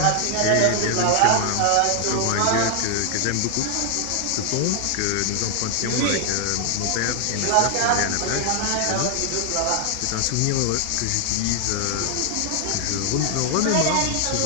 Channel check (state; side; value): different; both; correlation 0.00